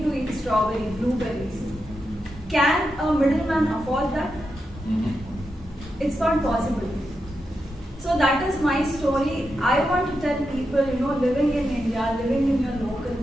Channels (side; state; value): both; normal; correlation 0.87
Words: to eat strawberry, blueberries. Can a middleman afford that? It's not possible. So that is my story. I want to tell people, living in India, living in your local